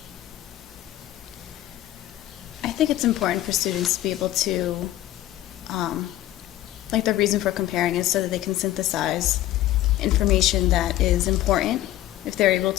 I think it's important for students to be able to, the reason for comparing is so that they can synthesize information that is important. If they're able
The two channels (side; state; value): right; quieter; 14.4 dB